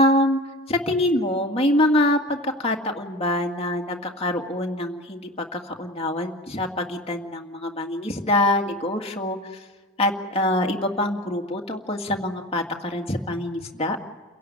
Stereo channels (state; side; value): normal; both; correlation 0.34